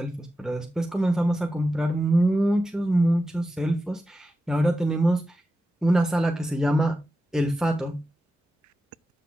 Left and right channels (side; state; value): both; normal; correlation 0.92